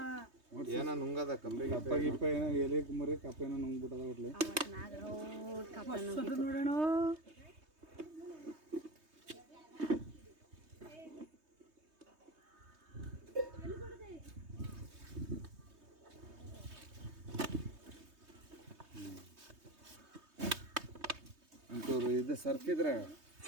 ಏನೋ ನುಂಗದ ಕಂಬಿ ಕಪ್ಪ ಗಿಪ್ಪ ಏನೋ ಎಲೆ ಮರಿ ಕಪ್ಪ ಏನೋ ನುಂಗ್ಬಿಟ್ಟದ ಒಟ್ಲಿ ನೋಡೋಣ ಅಂತೂರು ಇದು ಸರ್ಫಿದ್ರೆ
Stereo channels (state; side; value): late; left; 3.2 ms